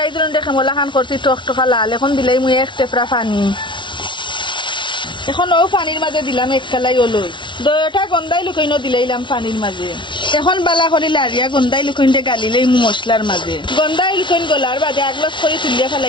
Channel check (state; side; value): late; right; 0.24 ms